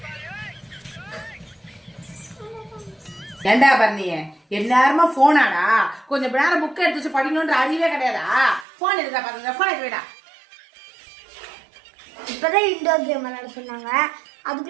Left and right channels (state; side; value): drops out; left; at 8.7 s